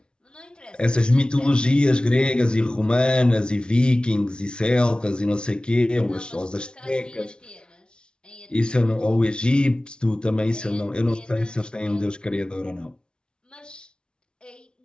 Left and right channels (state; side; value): late; right; 0.055 ms